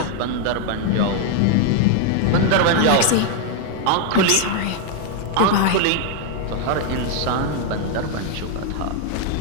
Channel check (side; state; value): both; different; correlation 0.00